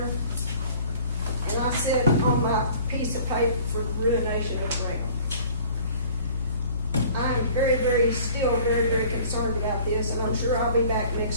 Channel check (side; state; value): both; inverted; correlation -0.50